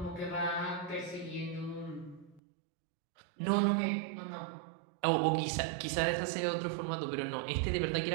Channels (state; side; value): drops out; left; at 2.4 s